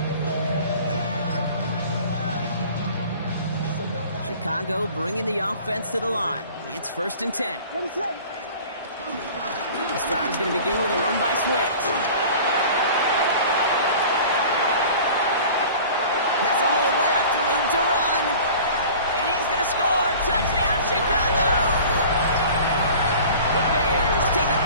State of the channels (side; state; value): both; inverted; correlation -0.43